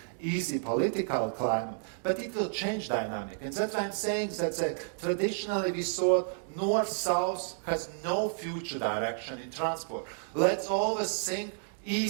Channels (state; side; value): silent; left; digital silence